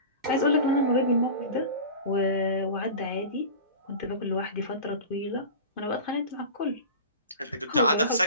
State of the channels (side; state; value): both; inverted; correlation -0.33